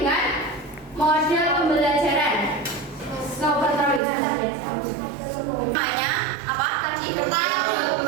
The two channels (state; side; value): drops out; left; at 4.0 s